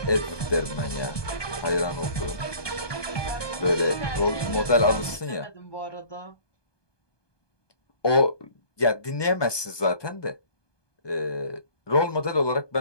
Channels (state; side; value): late; right; 1.2 ms